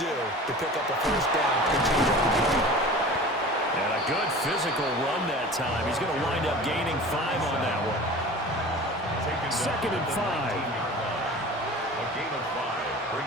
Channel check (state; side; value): normal; both; correlation 0.39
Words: do to pick up a first down? And a good physical run that time. He's going to wind up gaining 5 on that one. 2nd and 5. A gain of 5